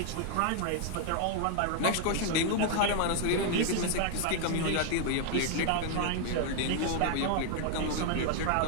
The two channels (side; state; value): both; different; correlation 0.00